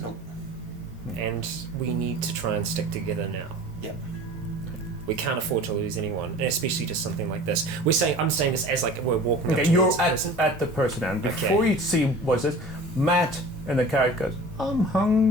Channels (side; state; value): both; normal; correlation 0.41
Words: Nope. And we need to try and stick together now. Yeah. We can't afford to lose anyone, and especially just something like this. I'm saying this as like we're walking up Okay, you're towards the person. at the person, and Okay. before you see what's this, Matt in the car goes, "I'm